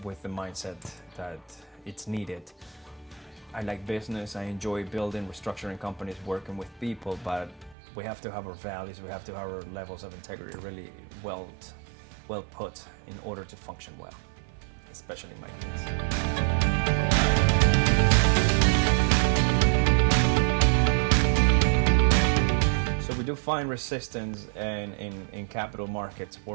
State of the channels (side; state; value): left; drops out; at 7.8 s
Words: with the mindset that it's needed. I like business, I enjoy building, restructuring companies, working with people, but we have to have our values, we have to have our levels of integrity really well put in order to function well, especially in my case. So we do find resistance in capital markets